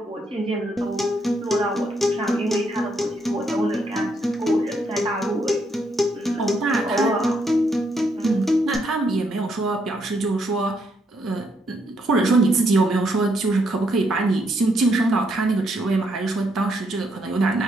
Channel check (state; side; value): normal; both; correlation 0.75